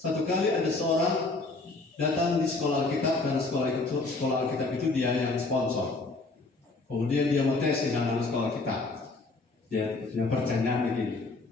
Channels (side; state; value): right; quieter; 3.5 dB